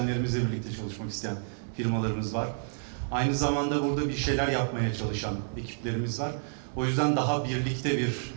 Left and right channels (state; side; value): silent; left; 58 dB below the other